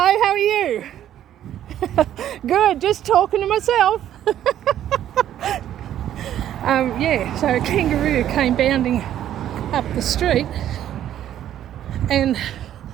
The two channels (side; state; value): left; quieter; 11.3 dB